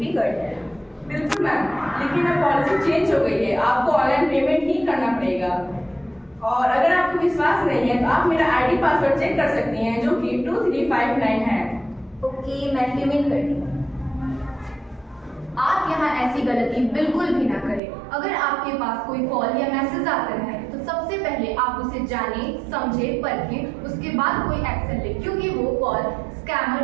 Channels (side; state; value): left; drops out; at 17.8 s